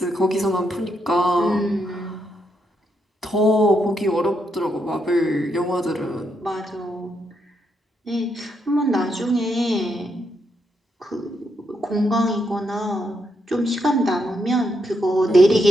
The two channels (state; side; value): normal; both; correlation 0.80